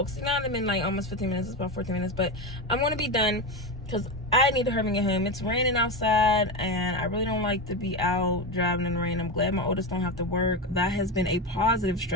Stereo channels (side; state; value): both; normal; correlation 0.16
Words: see, now I'm in like almost 15 minutes. It's about 14 minutes, but I'm going to be done because I need to hurry and get home. It's raining outside and I really don't like to be out driving in the rain. I'm glad my oldest don't have to work. That has been a positive